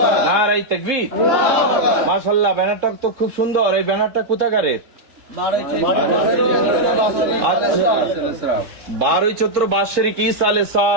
নারায়ে তাকবীর। মাশাআল্লাহ, ব্যানারটা তো খুব সুন্দর। এই ব্যানারটা কোথাকারের? 12 চৈত্র বাৎসরিক ঈসা আলাইহিস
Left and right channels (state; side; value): late; left; 3.7 ms